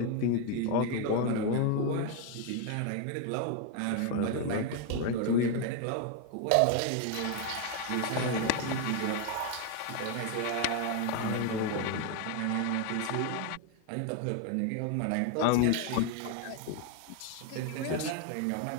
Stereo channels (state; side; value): different; both; correlation 0.01